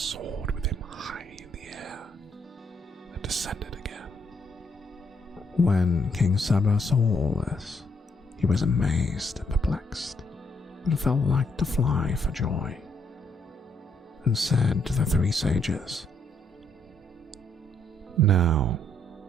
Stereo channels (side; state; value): both; normal; correlation 0.73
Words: with him high in the air and descended again. When King Saba saw all this, he was amazed and perplexed, and felt like to fly for joy, and said to the 3 sages, "Now